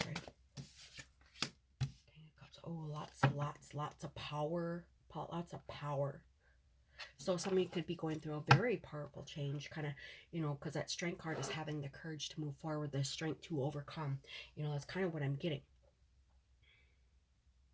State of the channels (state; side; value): identical; both; correlation 1.00